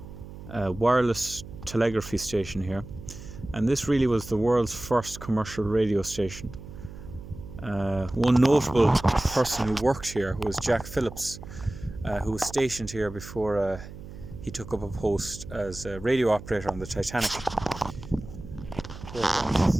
wireless telegraphy station here, and this really was the world's first commercial radio station. One notable person who worked here was Jack Phillips, who was stationed here before he took up a post as a radio operator on the Titanic. This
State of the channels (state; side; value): noise; right; hum, 14 dB below the sound